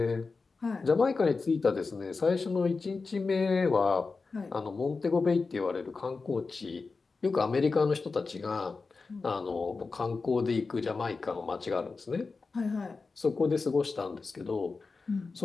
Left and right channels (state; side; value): quieter; right; 4.2 dB